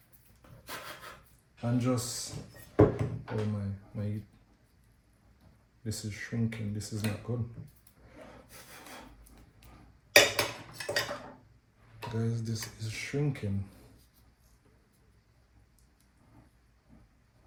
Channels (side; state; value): both; identical; correlation 1.00